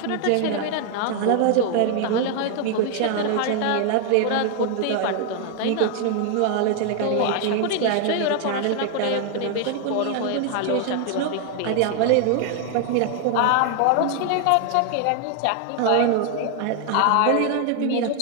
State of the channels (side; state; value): both; different; correlation 0.00